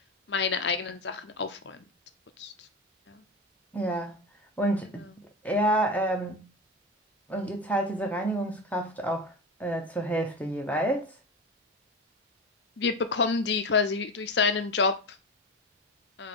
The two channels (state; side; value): normal; both; correlation 0.23